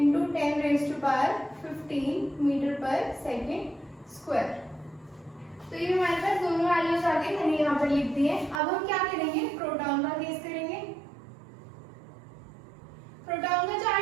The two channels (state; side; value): drops out; left; at 8.6 s